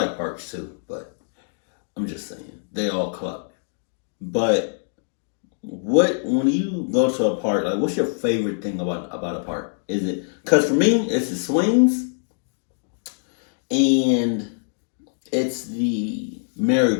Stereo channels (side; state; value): right; silent; digital silence